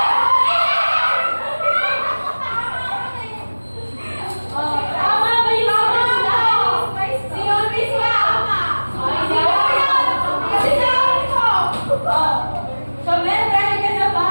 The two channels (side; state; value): both; inverted; correlation -1.00